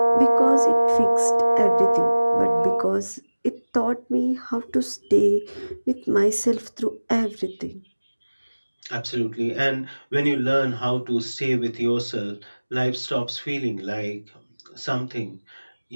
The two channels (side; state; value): both; inverted; correlation -1.00